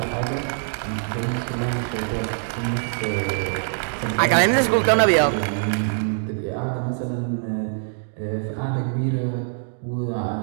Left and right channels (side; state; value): left; silent; 62 dB below the other